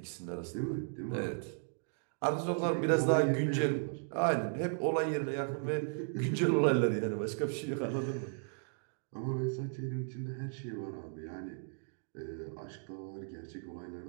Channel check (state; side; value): silent; left; digital silence